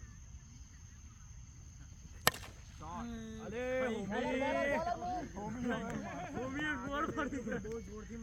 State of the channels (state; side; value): identical; both; correlation 1.00